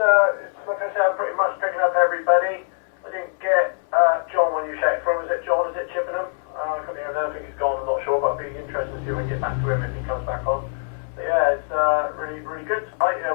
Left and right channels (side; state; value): right; silent; 63 dB below the other